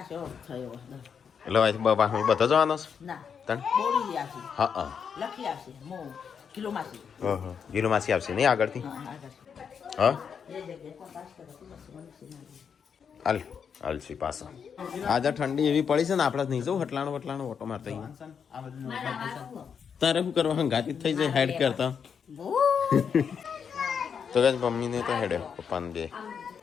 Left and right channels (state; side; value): quieter; right; 6.9 dB